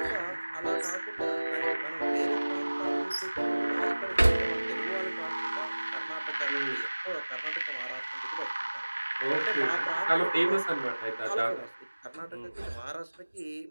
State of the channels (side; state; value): both; inverted; correlation -1.00